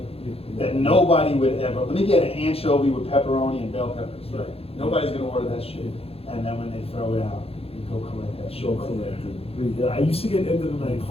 that nobody would ever. Let me get an anchovy with pepperoni and bell peppers. Right. Nobody's gonna order that shit. And then when they throw it out, you go collect that shit. Show collected. Yeah, I used to get end of the night.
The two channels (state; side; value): late; right; 0.28 ms